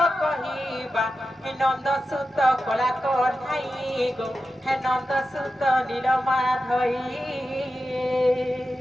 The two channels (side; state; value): both; normal; correlation 0.91